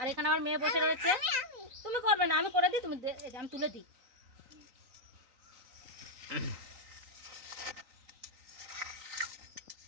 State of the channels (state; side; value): late; left; 3.9 ms